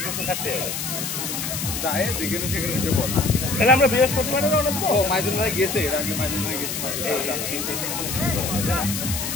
তো থাকতে হবে যায় যেখানে সেখানে উঠে পড়ে। তাহলে আমরা বৃহস্পতিবারে রওনা দেবো ও মাইদুল ভাই গেছে, এর আগে মাইদুল ভাই গেছে।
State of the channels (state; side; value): noise; left; hiss, 4 dB below the sound